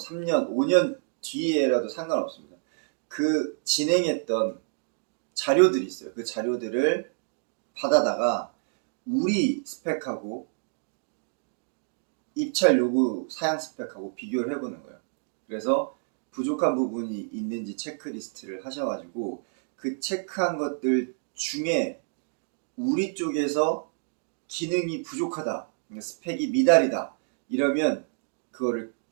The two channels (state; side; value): silent; left; digital silence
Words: 5년 뒤에라도 상관없습니다. 그 진행했던 자료들이 있어요. 그 자료들을 받아다가 우리 스펙하고 입찰 요구 사양 스펙하고 비교를 해보는 거예요. 그래서 부족한 부분이 있는지 체크리스트를 하셔가지고 그 체크한 것들 중에 우리 쪽에서 기능이 부족하다, 스펙이 미달이다 이러면 그거를